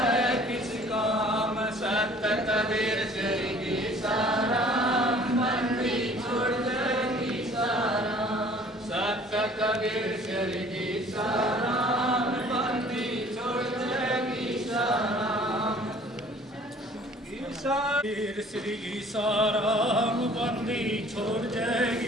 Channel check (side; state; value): both; normal; correlation 0.52